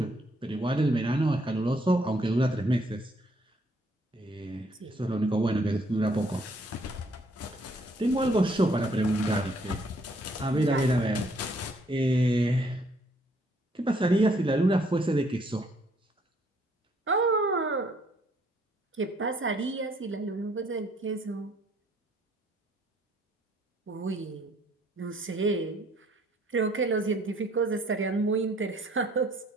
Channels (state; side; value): normal; both; correlation 0.65